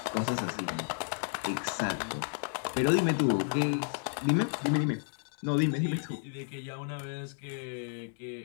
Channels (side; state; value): right; silent; digital silence